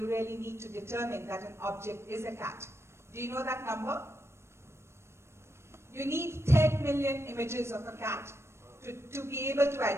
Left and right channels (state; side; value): late; left; 0.13 ms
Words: really need to determine that an object is a cat? Do you know that number? You need 10 million images of a cat to be able to